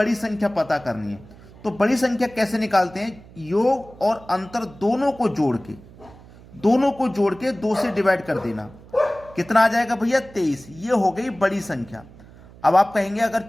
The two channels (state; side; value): noise; right; hum, 21 dB below the sound